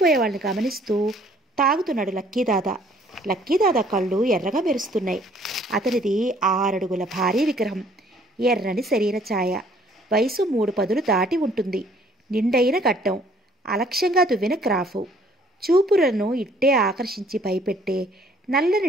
వాళ్ళని గమనిస్తూ తాగుతున్నాడు లక్కీదాదా. లక్కీదాదా కళ్ళు ఎర్రగా మెరుస్తున్నాయి. అతనిది 6 అడుగుల భారీ విగ్రహం. ఎర్రని శరీర ఛాయ. వయసు 3 పదులు దాటి ఉంటుంది. నిండైన గడ్డం. అలక్ష్యంగా దువ్విన క్రాఫు. చూపులను ఇట్టే ఆకర్షించి భయపెట్టే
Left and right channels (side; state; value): both; normal; correlation 0.60